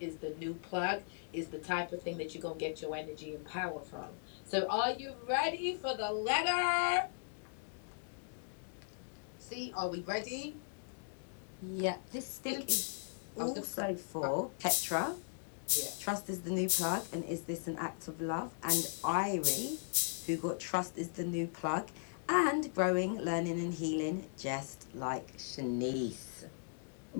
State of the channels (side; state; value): right; silent; digital silence